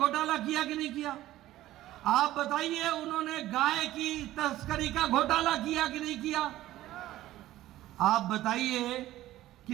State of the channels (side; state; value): left; quieter; 15.0 dB